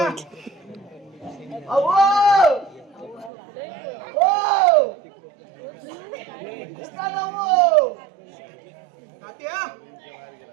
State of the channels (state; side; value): drops out; left; at 3.3 s